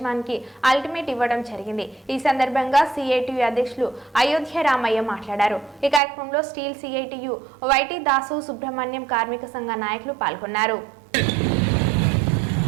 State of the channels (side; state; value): left; drops out; at 6.0 s